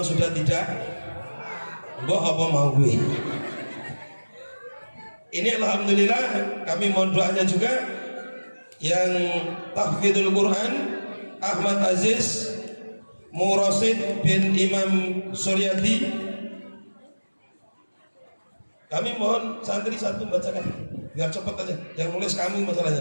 tidak, mbok apa mau gue. Ini alhamdulillah kami mohon doanya juga yang tahfidzul Quran Ahmad Aziz Murasid bin Imam Suryadi. Kami mohon santri satu bacakan biar cepat aja, yang nulis kami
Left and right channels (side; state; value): both; inverted; correlation -1.00